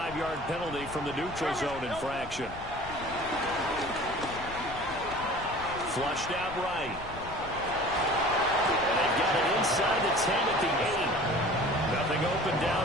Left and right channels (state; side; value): noise; left; rumble, 14 dB below the sound